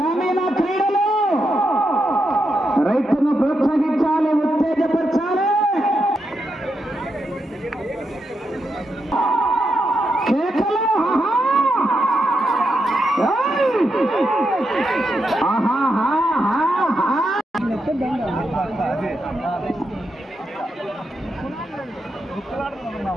క్రీడలు రైతును ప్రోత్సహించాలి, ఉత్తేజపరచాలి. కేకలు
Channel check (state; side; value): normal; both; correlation 0.84